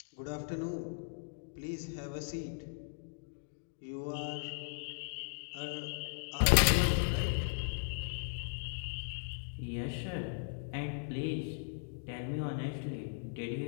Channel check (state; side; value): silent; right; digital silence